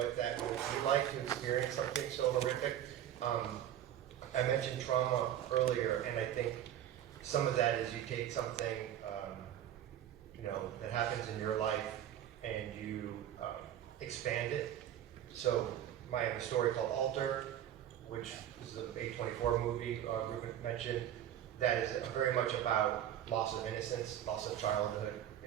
that would be like to experience something so horrific. I mentioned trauma earlier, and I think some of that is you take something, you know, that happens in your life, and you expand it. So I have a story called Alter, which is an A24 movie Ruben mentioned, that is very much about loss of innocence, loss of childhood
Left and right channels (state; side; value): quieter; left; 11.2 dB